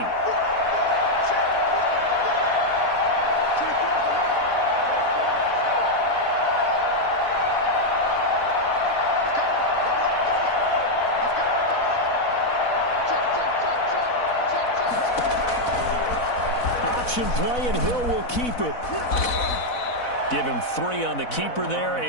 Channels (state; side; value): late; right; 4.0 ms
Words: Play, and Hill will keep it. Give him 3 on the keeper there,